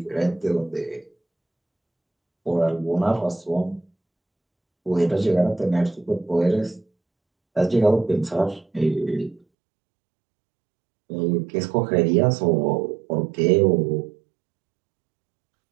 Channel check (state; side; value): drops out; left; at 9.4 s